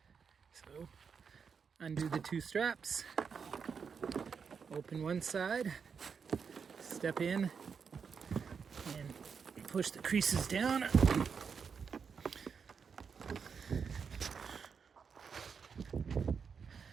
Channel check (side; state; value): left; quieter; 6.1 dB